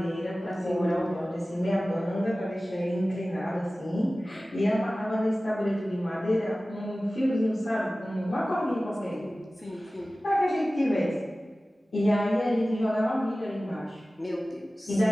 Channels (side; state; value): both; normal; correlation 0.97